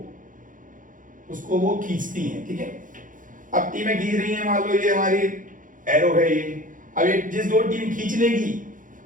उसको वो खींचती हैं. ठीक है. अब टीमें खींच रही हैं, मान लो ये हमारी एरो है ये. अब ये जिस दो टीम खींच लेगी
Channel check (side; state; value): left; late; 0.38 ms